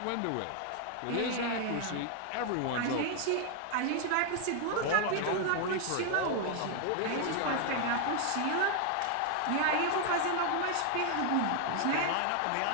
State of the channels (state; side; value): different; both; correlation 0.00